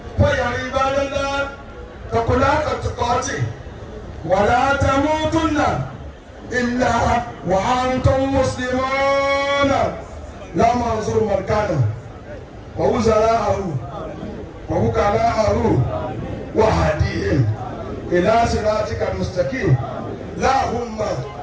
فيا عباد الله، اتقوا الله حق تقاته ولا تموتن إلا وأنتم مسلمون. لا منظور مركانه ووزراءه ووكلاءه وهديهم إلى صراطك المستقيم. اللهم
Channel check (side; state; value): both; identical; correlation 1.00